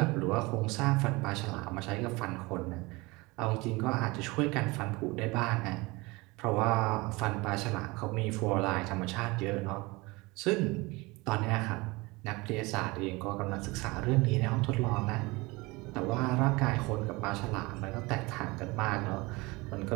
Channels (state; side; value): quieter; left; 23.8 dB